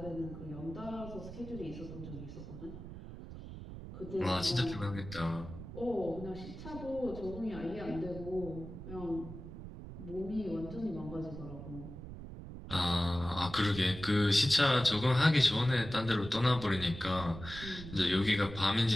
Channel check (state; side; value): noise; right; rumble, 11 dB below the sound